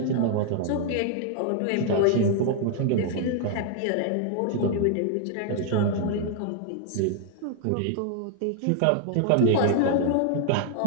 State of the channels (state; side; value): different; both; correlation 0.00